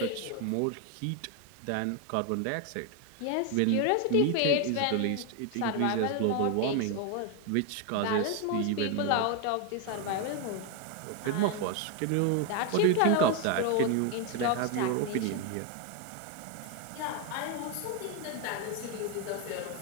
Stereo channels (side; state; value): both; different; correlation 0.01